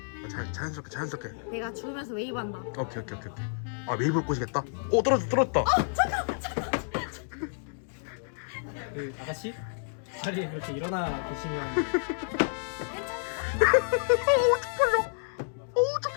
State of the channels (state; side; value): silent; right; digital silence